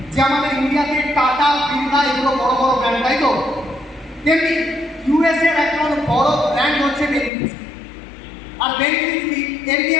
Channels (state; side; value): drops out; right; at 7.3 s